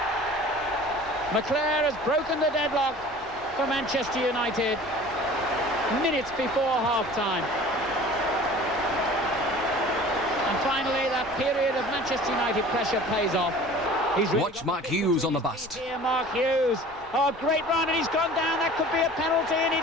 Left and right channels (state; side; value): normal; both; correlation 0.44